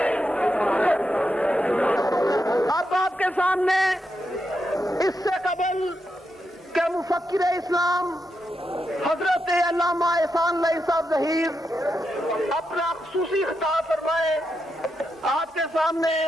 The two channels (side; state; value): both; normal; correlation 0.85